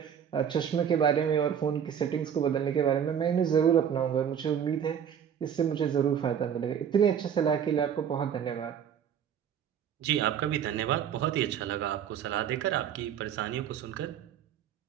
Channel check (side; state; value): left; quieter; 8.5 dB